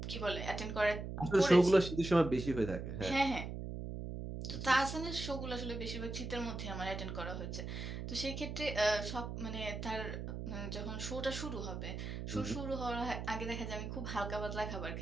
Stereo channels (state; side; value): noise; right; hum, 6 dB below the sound